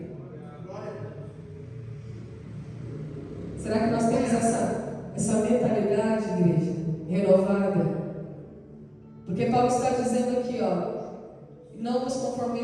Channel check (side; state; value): both; identical; correlation 1.00